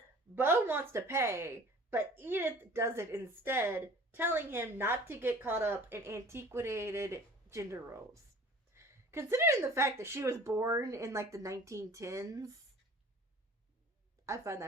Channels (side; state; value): both; normal; correlation 0.46